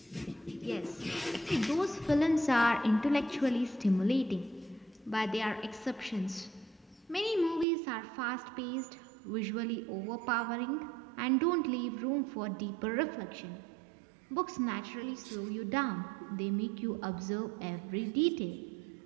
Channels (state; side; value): drops out; left; at 7.7 s